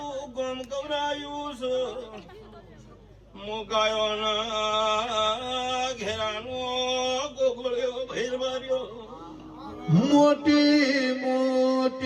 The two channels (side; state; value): both; identical; correlation 1.00